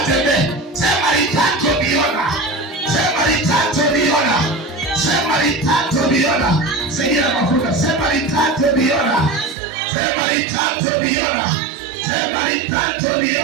Sema litatobiona. Sema litatobiona. Sema litatobiona. Sema mafuta. Sema litatobiona. Sema litatobiona. Sema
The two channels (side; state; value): left; drops out; at 9.6 s